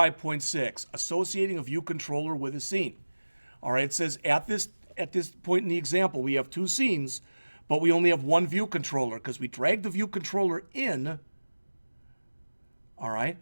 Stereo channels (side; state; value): both; inverted; correlation -1.00